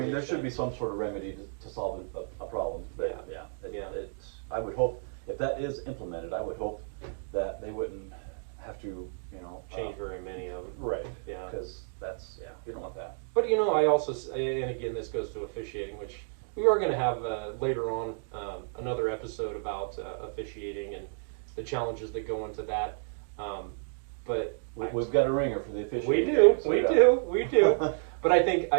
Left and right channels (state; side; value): silent; left; digital silence